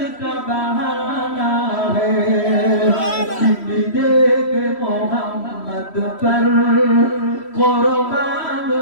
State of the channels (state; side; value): late; right; 3.1 ms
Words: का बहाना है, देख मोहम्मद पर कुर्बान